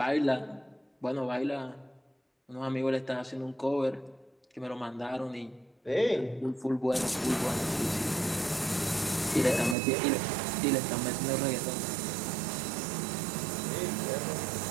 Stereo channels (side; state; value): left; drops out; at 9.8 s